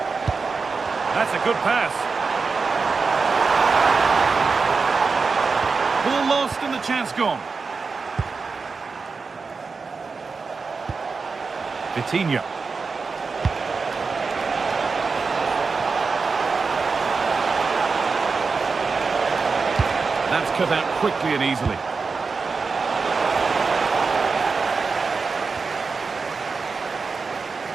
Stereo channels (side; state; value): left; quieter; 4.6 dB